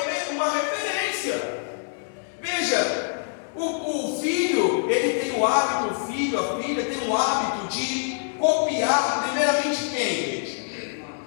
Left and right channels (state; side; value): silent; right; digital silence